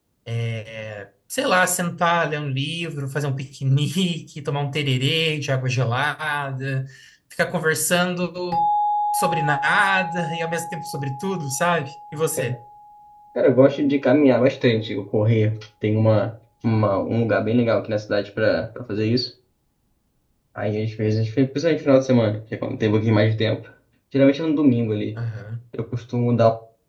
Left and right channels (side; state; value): both; identical; correlation 1.00